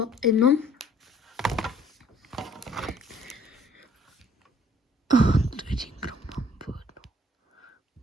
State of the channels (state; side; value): normal; both; correlation 0.59